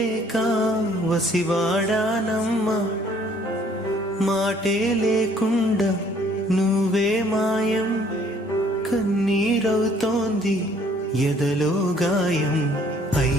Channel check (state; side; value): normal; both; correlation 0.60